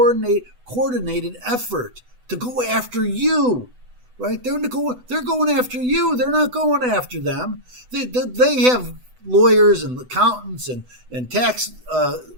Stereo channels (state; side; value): late; left; 8.0 ms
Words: effort to go after you, right? They're going after you. They're not going after them. They have lawyers and accountants and tax